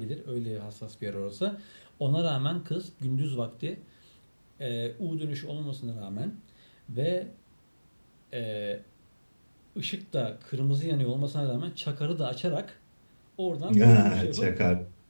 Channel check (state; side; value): inverted; both; correlation -1.00